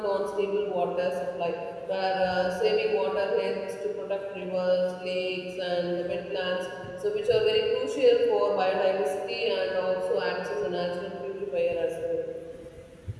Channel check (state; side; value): identical; both; correlation 1.00